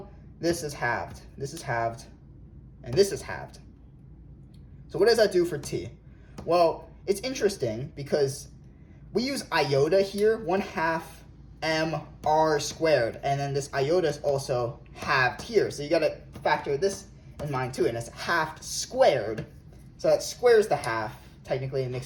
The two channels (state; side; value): identical; both; correlation 1.00